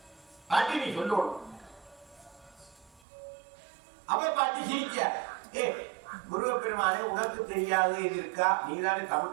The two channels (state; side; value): drops out; left; at 3.0 s